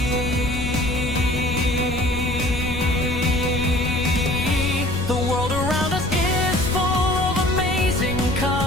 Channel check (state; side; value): noise; left; rumble, 7 dB below the sound